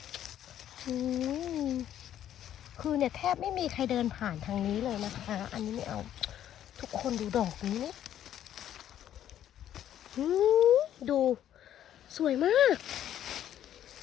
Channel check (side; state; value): right; quieter; 11.1 dB